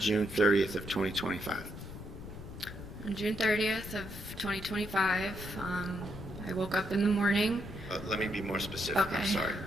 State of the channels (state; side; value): noise; left; rumble, 11 dB below the sound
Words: 30th of 2025? On June 30th of 2025, I woke up in the morning. Let me be more specific. Okay. I'm sorry.